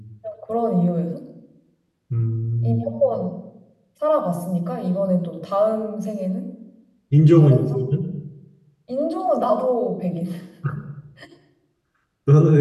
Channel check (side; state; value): both; identical; correlation 1.00